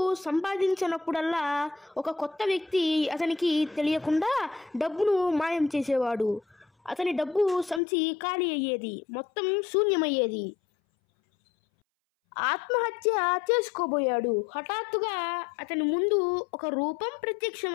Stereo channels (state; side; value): drops out; right; at 7.8 s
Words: సంపాదించినప్పుడల్లా ఒక కొత్త వ్యక్తి అతనికి తెలియకుండా డబ్బును మాయం చేసేవాడు. అతని డబ్బు సంచి ఖాళీ అయ్యేది, మొత్తం శూన్యమయ్యేది. ఆత్మహత్య చేసుకోబోయాడు. హఠాత్తుగా అతని ముందు ఒక రూపం